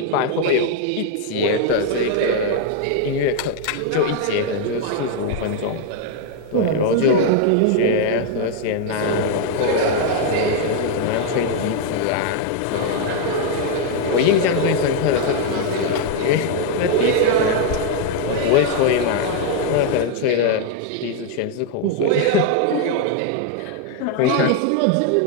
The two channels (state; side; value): different; both; correlation 0.00